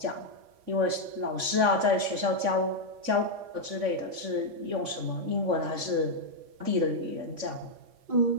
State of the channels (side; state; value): left; late; 3.5 ms